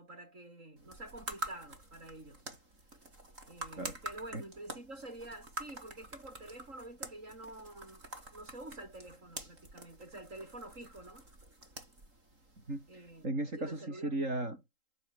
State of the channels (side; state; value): left; late; 3.8 ms